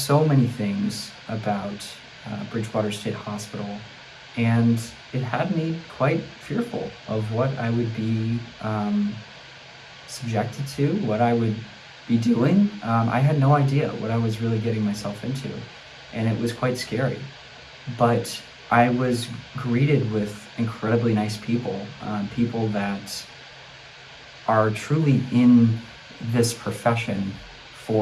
many things about Bridgewater State Hospital, and it had me quite fearful of what I would be subjected to, what I would be doing. I had no idea what I was really getting myself into, and it was quite scary. But I was greeted with incredibly nice people, people that are truly in this profession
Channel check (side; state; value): both; identical; correlation 1.00